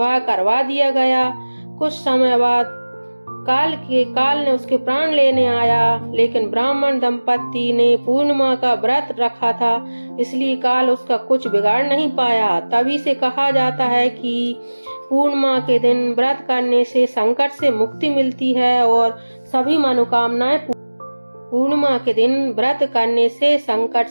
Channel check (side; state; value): both; inverted; correlation -1.00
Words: करवा दिया गया। कुछ समय बाद काल ने उसके प्राण लेने आया, लेकिन ब्राह्मण दंपति ने पूर्णिमा का व्रत रखा था, इसलिए काल उसका कुछ बिगाड़ नहीं पाया। तभी से कहा जाता है कि पूर्णिमा के दिन व्रत करने से संकट से मुक्ति मिलती है और सभी मनोकामनाएं पूर्णिमा के दिन व्रत करने से संकट